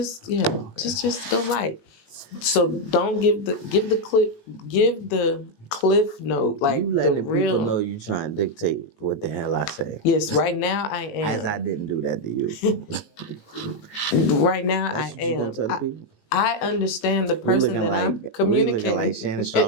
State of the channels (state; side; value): late; right; 19 ms